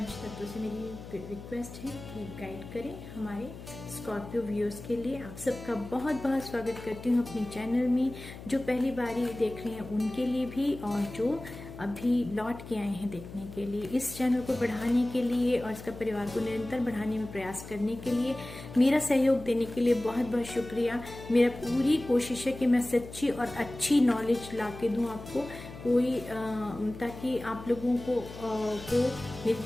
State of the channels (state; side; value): noise; left; hum, 14 dB below the sound